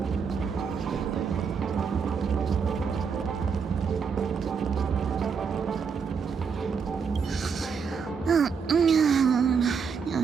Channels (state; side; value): quieter; left; 6.0 dB